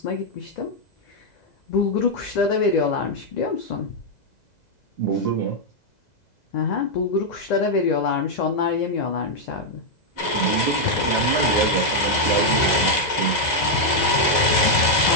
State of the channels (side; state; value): right; late; 2.0 ms